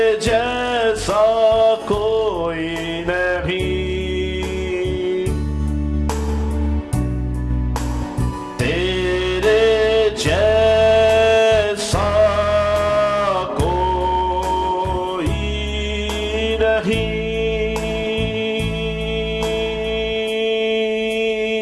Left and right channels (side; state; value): both; identical; correlation 1.00